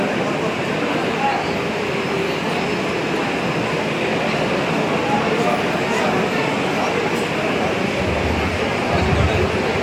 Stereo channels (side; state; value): both; identical; correlation 1.00